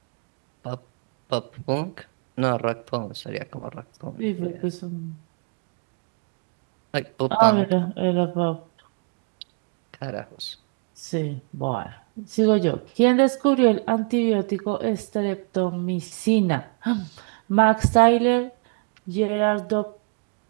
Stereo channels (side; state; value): left; quieter; 35.3 dB